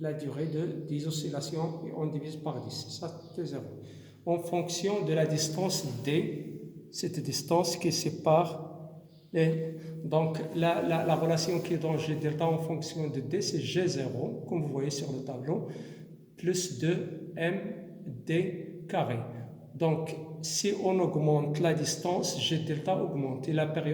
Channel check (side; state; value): both; identical; correlation 1.00